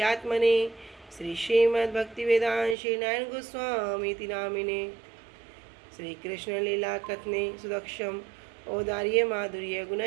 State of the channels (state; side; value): drops out; left; at 2.8 s